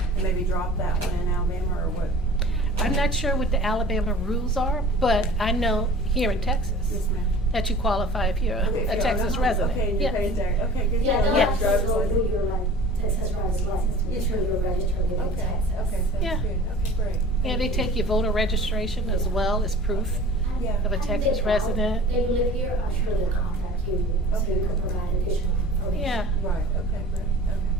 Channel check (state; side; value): normal; both; correlation 0.43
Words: maybe drop that one in Alabama, or what? I'm not sure what the Alabama rules are, but I know here in Texas Yes, ma'am. that you qualify if you're Okay, a if you're Texas on a home, resident. Okay, and Yeah. you're paying tax, okay, good. Yeah, they'll Yeah. have to Driver's go through license. your Texas driver's license to make sure you're registered within Okay, Texas. okay, Yeah. sounds good, okay, great. Yeah, they take your voter registration as well as proof Yeah. of a Texas resident. They live here, I'm sure they'll contact you, so Okay. you can provide additional information. Yeah. Right, okay, great,